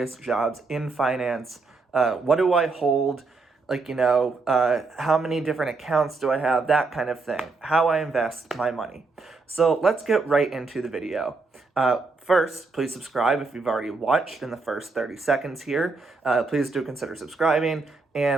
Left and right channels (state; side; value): quieter; left; 4.0 dB